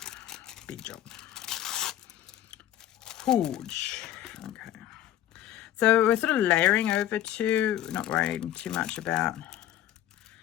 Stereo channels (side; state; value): right; quieter; 12.4 dB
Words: Big job. Huge. Okay. So we're sort of layering over to, not worrying too much about